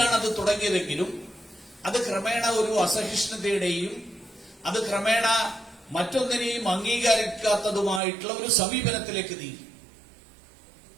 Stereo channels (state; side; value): drops out; left; at 8.0 s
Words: അത് തുടങ്ങിയതെങ്കിലും അത് ക്രമേണ ഒരു അസഹിഷ്ണുതയുടെയും അത് ക്രമേണ മറ്റൊന്നിനെയും അംഗീകരിക്കാത്തതുമായിട്ടുള്ള ഒരു സമീപനത്തിലേക്ക് നീങ്ങി.